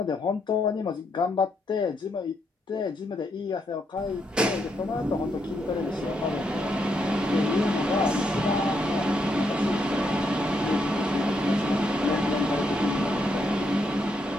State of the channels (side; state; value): both; normal; correlation 0.78